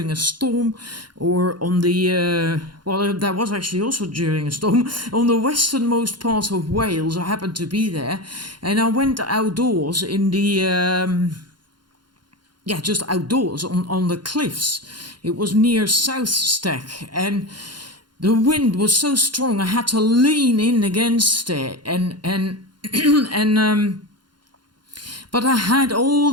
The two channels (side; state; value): left; late; 0.71 ms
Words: a storm, or on the, that was actually also during a storm, on the westernmost part of Wales. I happened to be there, and I went outdoors in the, just outdoors on the cliffs. It was near South Stack, and the wind was so strong I had to lean in against it, but I had all